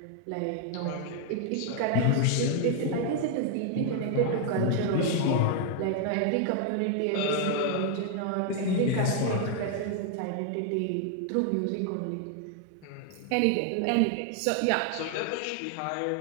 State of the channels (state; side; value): different; both; correlation 0.00